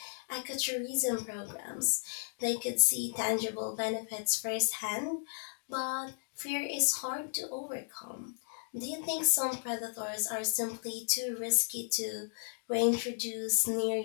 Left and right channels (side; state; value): right; silent; digital silence